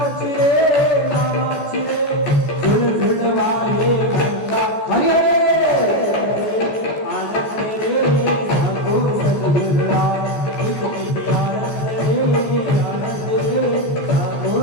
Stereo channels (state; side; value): late; right; 14 ms